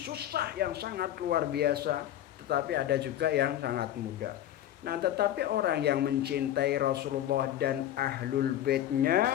yang sangat luar biasa, tetapi ada juga yang sangat mudah. Nah, tetapi orang yang mencintai Rasulullah dan Ahlul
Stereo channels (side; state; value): right; quieter; 12.2 dB